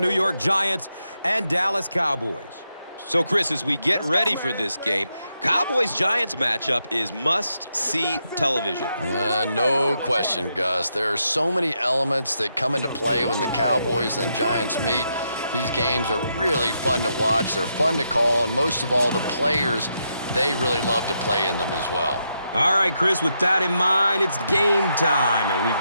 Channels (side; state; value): both; inverted; correlation -0.81